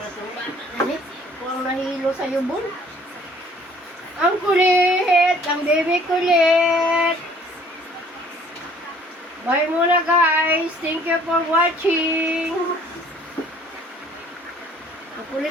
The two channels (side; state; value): both; normal; correlation 0.56